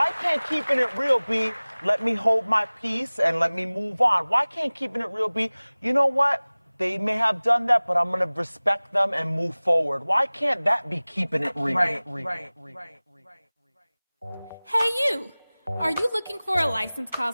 can't keeping it real be let me hold my peace and let me move on? Why can't keeping it real be, you know what? They may have done that, but I'm going to respect them and move forward. Why can't that be keeping it real? Right. Hey you! Are you looking for a licensed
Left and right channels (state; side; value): inverted; both; correlation -1.00